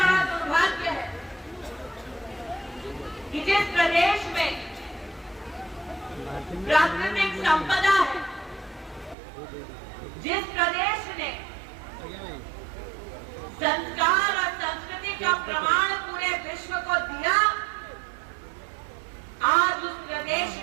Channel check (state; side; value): drops out; left; at 9.2 s